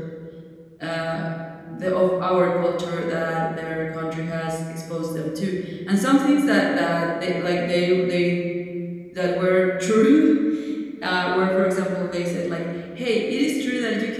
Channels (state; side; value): identical; both; correlation 1.00